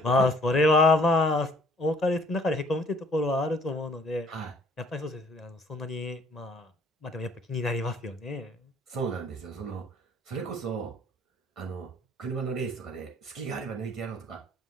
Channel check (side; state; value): both; normal; correlation 0.59